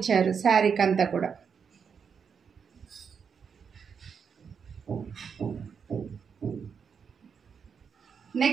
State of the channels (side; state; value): left; quieter; 6.5 dB